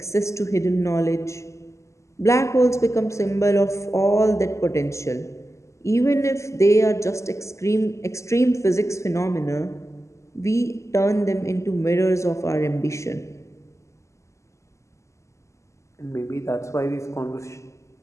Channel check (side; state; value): right; late; 0.14 ms